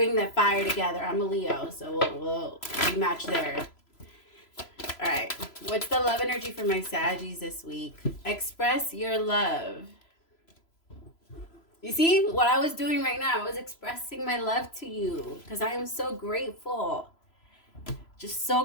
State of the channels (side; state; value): right; late; 3.0 ms